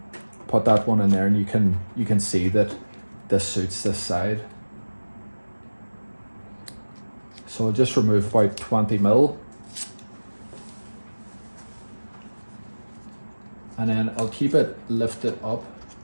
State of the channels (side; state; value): both; inverted; correlation -1.00